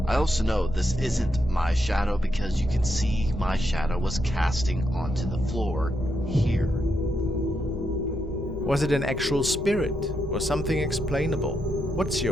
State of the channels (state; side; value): normal; both; correlation 0.82